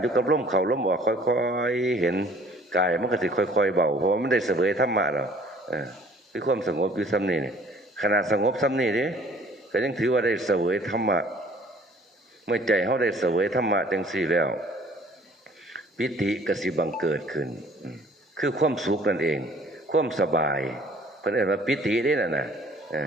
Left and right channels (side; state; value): both; normal; correlation 0.54